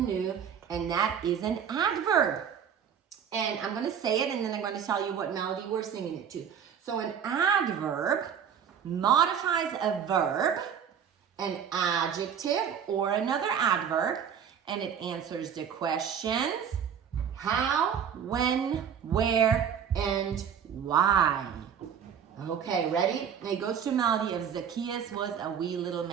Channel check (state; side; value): quieter; left; 7.9 dB